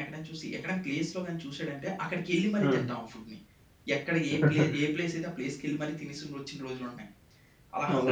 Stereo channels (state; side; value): identical; both; correlation 1.00